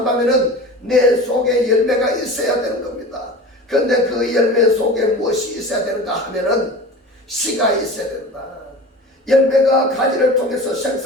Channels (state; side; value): normal; both; correlation 0.35